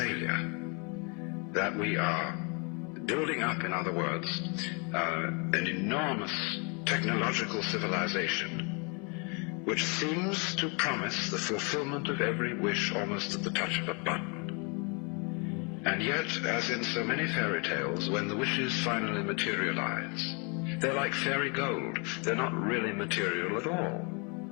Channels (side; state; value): right; quieter; 33.8 dB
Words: that we are building up, in other words, an enormous technological civilization which seems to promise the fulfillment of every wish almost at the touch of a button. And yet, as in so many fairy tales, when the wishes finally materialize, they're like fairy gold. They're not really material at all.